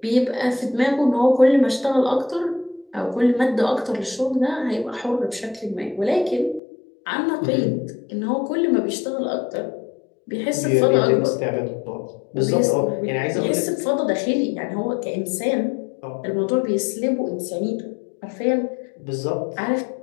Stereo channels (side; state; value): right; drops out; at 6.6 s